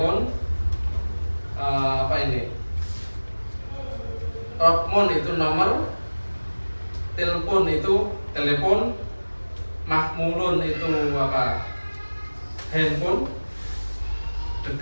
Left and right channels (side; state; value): both; inverted; correlation -1.00